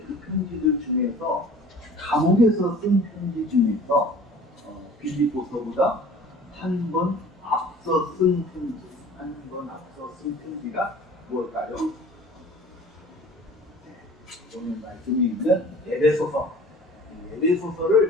그 편지들 중에서 감옥에서 쓴 편지 중에서 빌립보서보다 한 번 앞서 쓴 편지가 무엇일까요? 오늘 말씀이 있는 에베소서.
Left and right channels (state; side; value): normal; both; correlation 0.46